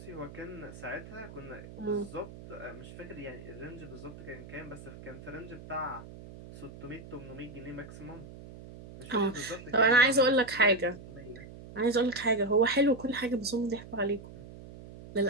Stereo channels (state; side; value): noise; right; hum, 15 dB below the sound